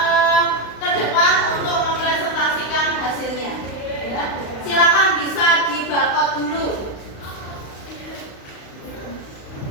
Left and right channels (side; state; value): right; late; 35 ms